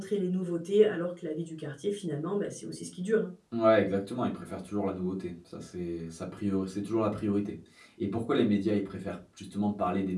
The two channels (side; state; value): both; identical; correlation 1.00